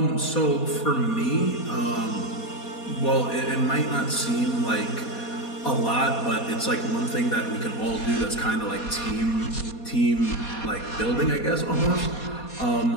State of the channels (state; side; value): late; right; 4.2 ms